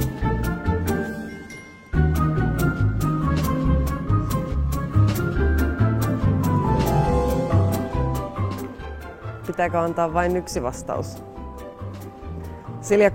Pitääkö antaa vain yksi vastaus?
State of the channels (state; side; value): identical; both; correlation 1.00